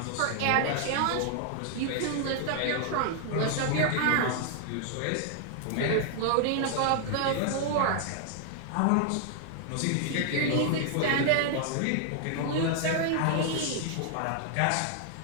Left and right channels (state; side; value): different; both; correlation 0.00